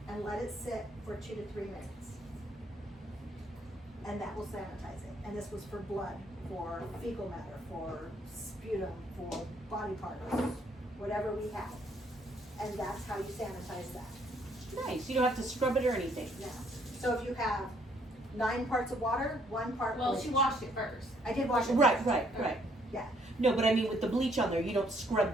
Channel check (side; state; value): both; normal; correlation 0.67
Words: let it sit for 2 to 3 minutes. And that will sanitize it. And this was for blood, for fecal matter, for sputum, for body parts, whatever we have. And that's how you sanitize that. Nice. You don't have to scrub it or anything. Now, so if you have 9 parts of water, 1 part Well, bleach. she washed it first. I did wash it. Right, first. right. Yeah. No, but I mean with the bleach on there, you don't scrub